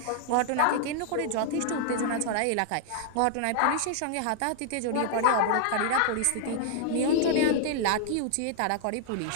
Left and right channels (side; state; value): both; different; correlation -0.01